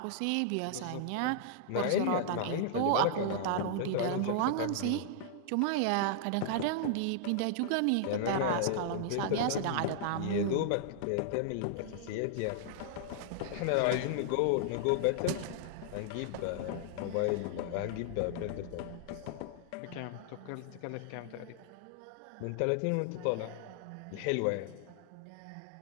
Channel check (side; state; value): both; different; correlation -0.01